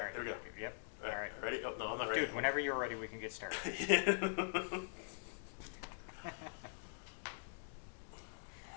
Here we go. Yep. All All right, right. ready? Oh, no, I'm not ready. Dude, whenever you're ready, we can get started.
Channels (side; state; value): right; silent; digital silence